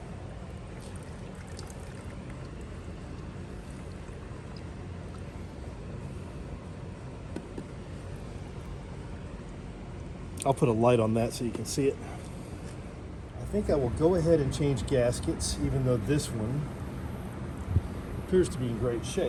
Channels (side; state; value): both; identical; correlation 1.00